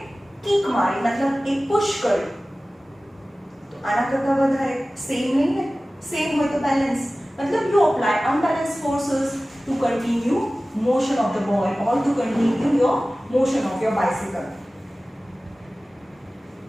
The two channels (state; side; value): normal; both; correlation 0.97